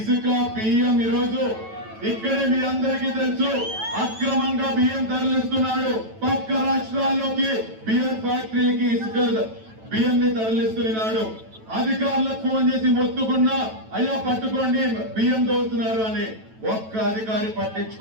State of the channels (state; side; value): late; left; 9.1 ms